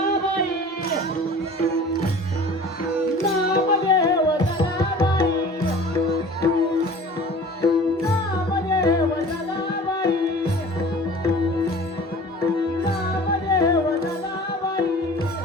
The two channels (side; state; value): both; normal; correlation 0.43